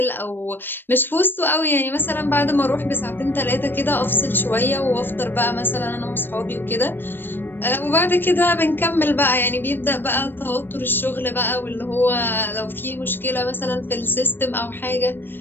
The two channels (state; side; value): late; right; 0.097 ms